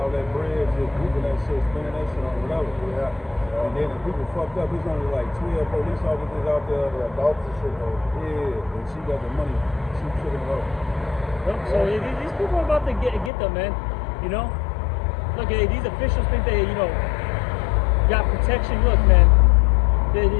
that bread, just whooping that shit, spinning that shit on whatever. Yeah. And then the people fucked up, there's only like 12 police officers out there. Yeah, Dalton shit. Yeah, and she got the money, she took it off. So these people are about to get them, man. Look, these officials think they, got protection. Look, man.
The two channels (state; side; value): drops out; right; at 13.3 s